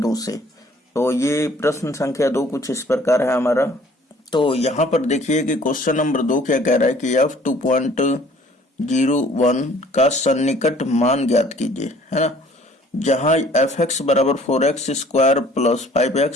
से। तो ये प्रश्न संख्या 2 कुछ इस प्रकार है हमारा। तो यहाँ पर देखिए कि क्वेश्चन नंबर 2 क्या कह रहा है कि f 2.01 का सन्निकट मान ज्ञात कीजिए, है ना, जहां fx बराबर 4x square plus 5x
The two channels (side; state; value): both; normal; correlation 0.55